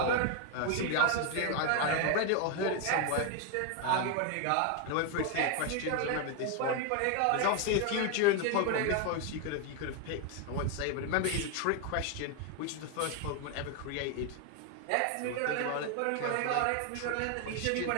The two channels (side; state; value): both; different; correlation 0.01